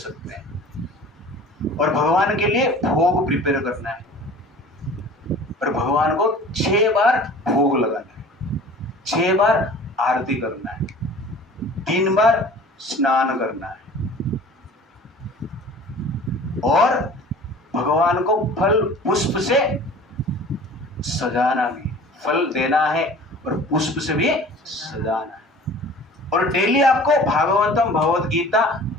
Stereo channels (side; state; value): both; normal; correlation 0.44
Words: हैं। और भगवान के लिए भोग प्रिपेयर करना है और भगवान को 6 बार भोग लगाना है, 6 बार आरती करना है, 3 बार स्नान करना है और भगवान को फल पुष्प से सजाना भी, फल देना है और पुष्प से भी सजाना है। और डेली आपको भागवतम भगवत गीता